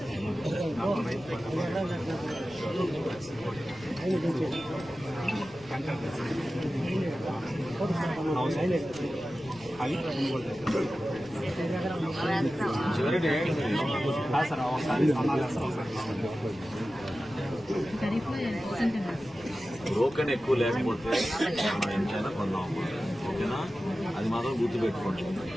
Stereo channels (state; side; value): noise; left; rumble, 22 dB below the sound